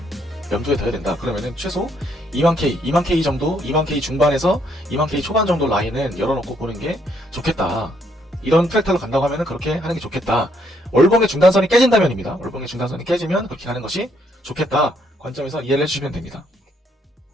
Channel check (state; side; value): normal; both; correlation 0.71